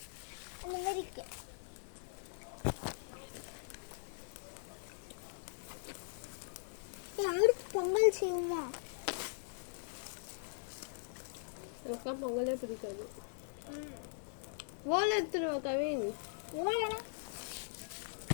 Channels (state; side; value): silent; right; 51 dB below the other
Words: அந்த மாதிரி இருக்கு. யாருக்கு பொங்கல் செய்வோமா? எனக்குலாம் பொங்கலே பிடிக்காது. ஓலை எடுத்துருவா கவின். ஓலையா?